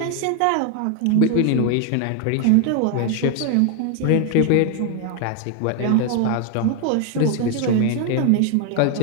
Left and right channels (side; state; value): both; different; correlation 0.00